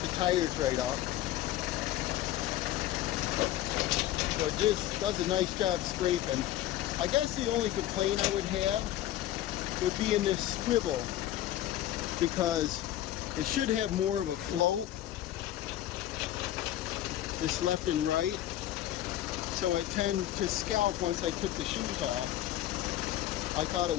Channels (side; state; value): right; quieter; 13.5 dB